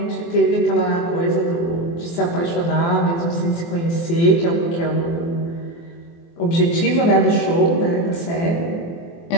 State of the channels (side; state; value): right; late; 24 ms